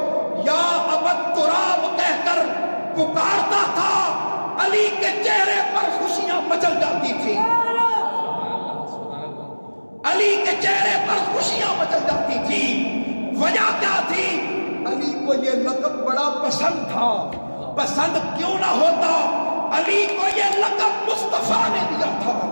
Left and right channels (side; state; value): both; inverted; correlation -1.00